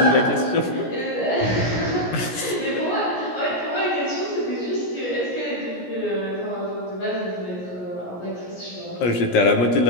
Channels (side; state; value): right; late; 17 ms